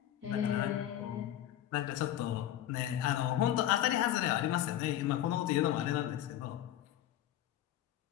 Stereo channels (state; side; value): quieter; right; 12.2 dB